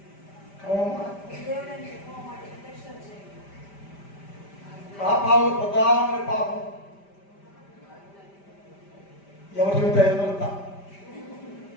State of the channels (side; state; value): right; late; 5.1 ms